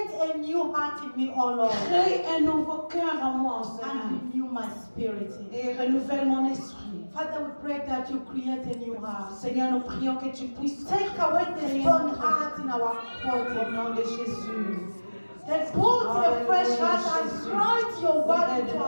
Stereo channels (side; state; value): both; inverted; correlation -1.00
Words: a new heart in me, O Lord, Crée un nouveau cœur en moi, Seigneur. and renew my spirit. Et renouvelle mon esprit. Father, we pray that you create a new heart. Seigneur, nous prions que tu puisses Take away the stone heart in our au body. nom de Jésus. And put a fresh heart and write your word into Aide-nous,